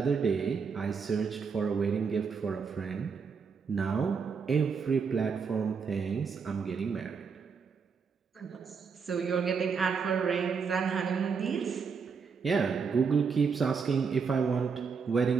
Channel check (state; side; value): quieter; left; 5.7 dB